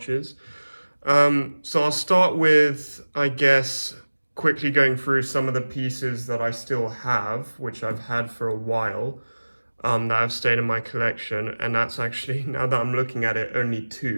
So I'll start with, I guess, quickly going through some of the pieces that I still have, which I've had for a while, that have stayed in my collection, and that's actually, now that I'm looking at it, only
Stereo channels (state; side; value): inverted; both; correlation -1.00